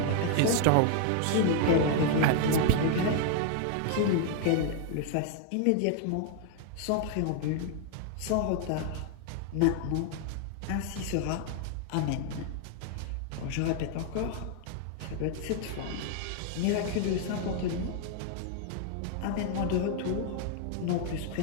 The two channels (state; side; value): different; both; correlation 0.00